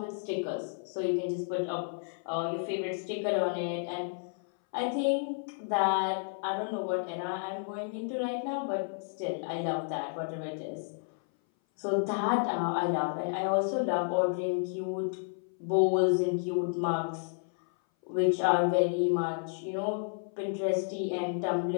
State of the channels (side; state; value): right; silent; 57 dB below the other